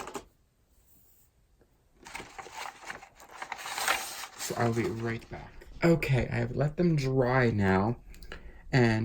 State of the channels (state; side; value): identical; both; correlation 1.00